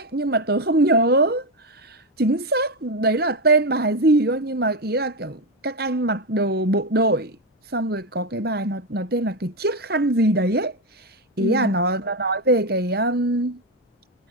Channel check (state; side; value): normal; both; correlation 0.09